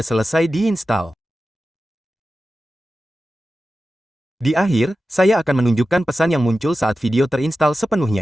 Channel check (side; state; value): both; normal; correlation 0.93